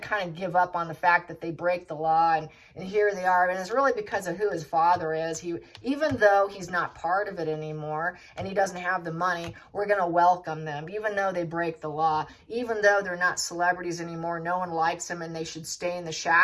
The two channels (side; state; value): both; identical; correlation 1.00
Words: of give up on the fact that they break the law. And here they are. And it's really because of who his father is. Even though he's not part of it anymore and he doesn't have the money, we're going to welcome them. Even though they break the law, even though they're not celebrities anymore, no one likes them and they should stay in the